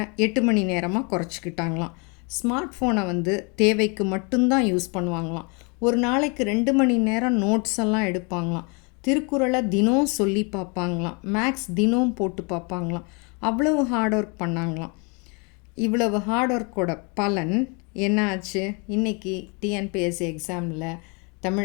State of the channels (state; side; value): quieter; right; 32.4 dB